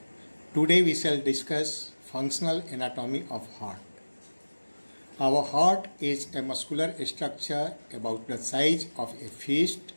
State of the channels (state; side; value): inverted; both; correlation -1.00